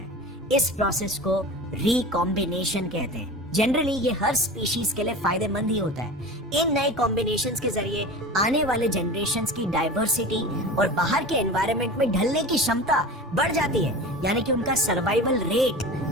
इस प्रोसेस को रिकॉम्बिनेशन कहते हैं। जनरली ये हर स्पीशीज के लिए फायदेमंद ही होता है। इन नए कॉम्बिनेशंस के जरिए आने वाले जनरेशंस की डाइवर्सिटी और बाहर के एनवायरनमेंट में ढलने की क्षमता बढ़ जाती है, यानी कि उनका सर्वाइवल रेट,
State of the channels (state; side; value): normal; both; correlation 0.33